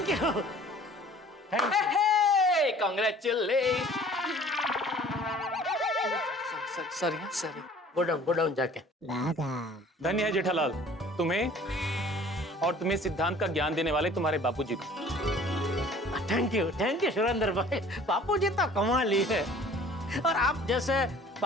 you. Congratulations! Sorry. Go down जाके। धन्य है जेठालाल तुम्हें और तुम्हें सिद्धांत का ज्ञान देने वाले तुम्हारे बापूजी को। थैंक यू सुरेंद्र भाई, बापूजी तो कमाल ही है। और आप जैसे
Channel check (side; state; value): both; normal; correlation 0.50